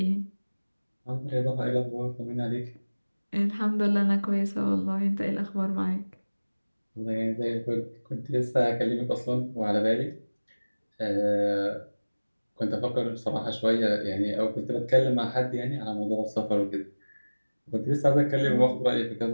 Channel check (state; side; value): inverted; both; correlation -1.00